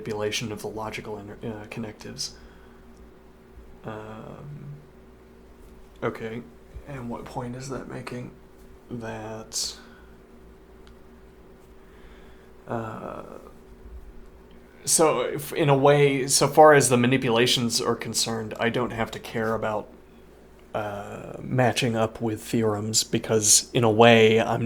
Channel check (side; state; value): both; identical; correlation 1.00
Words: of the logical connectives. Okay, and what point is that making? That so if, in a way, so far as the manipulations are concerned, I don't have to care about matching up with theorems, because in a way I'm